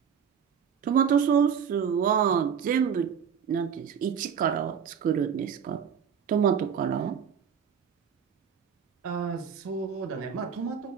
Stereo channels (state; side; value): quieter; left; 7.4 dB